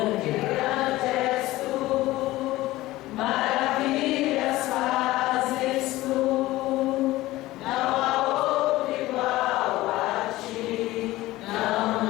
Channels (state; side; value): quieter; right; 17.5 dB